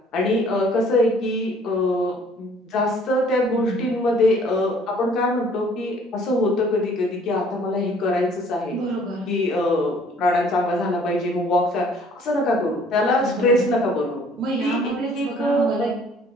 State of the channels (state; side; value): normal; both; correlation 0.57